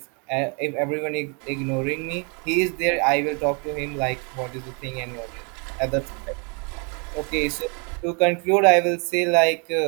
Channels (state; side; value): quieter; left; 34.6 dB